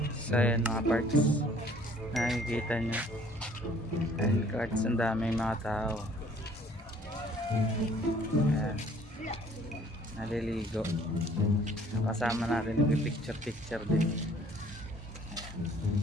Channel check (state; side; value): normal; both; correlation 0.57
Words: So ayan mga parts, nakikita nyo and cards, ang daming mga tao. Ayan, naliligo. Kasama natin yung picture din.